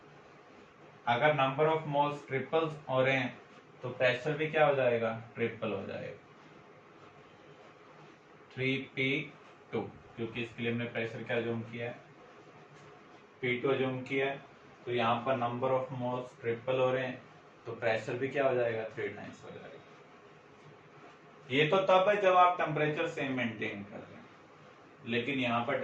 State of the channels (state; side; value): identical; both; correlation 1.00